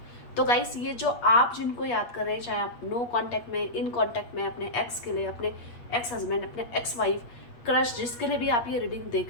तो गाइस, ये जो आप जिनको याद कर रहे हैं, चाहे आप नो कांटेक्ट में, इन कांटेक्ट में, अपने एक्स के लिए, अपने एक्स हस्बैंड, अपने एक्स वाइफ, क्रश, जिसके लिए भी आप ये रीडिंग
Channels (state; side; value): late; right; 8.4 ms